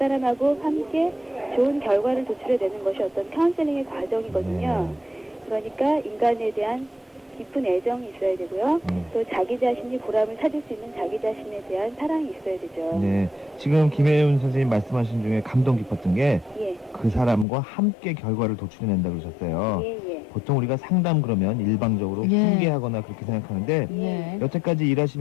함께 좋은 결과를 도출해내는 것이 어떤 카운셀링의 과정이거든요. 그러니까 인간에 대한 깊은 애정이 있어야 되고요. 또 자기 자신이 보람을 찾을 수 있는 자기 자신에 대한 사랑이 있어야 되죠. 지금 김혜윤 선생님 말씀하신 중에 감동 깊었던 게 그 사람과 함께 결과를 도출해낸다고 그러셨어요. 보통 우리가 상담 그러면 일방적으로 훈계하거나 그렇게 생각하는데 여태까지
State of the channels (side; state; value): right; drops out; at 17.4 s